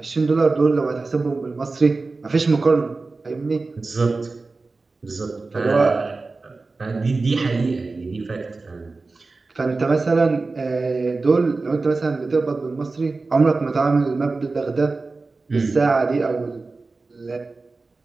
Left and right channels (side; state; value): left; quieter; 3.7 dB